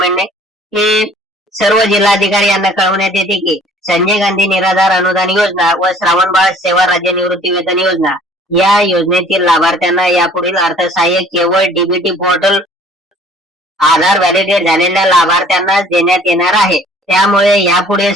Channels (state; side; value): normal; both; correlation 0.53